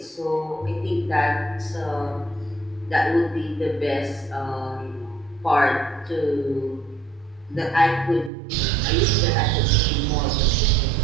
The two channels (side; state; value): left; drops out; at 8.3 s